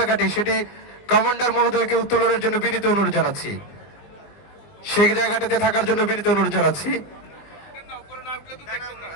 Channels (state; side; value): late; right; 20 ms